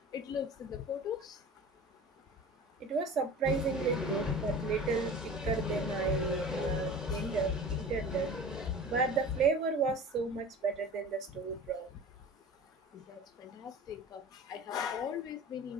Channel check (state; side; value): normal; both; correlation 0.38